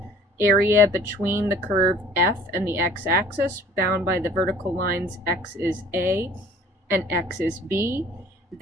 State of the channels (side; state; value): both; normal; correlation 0.51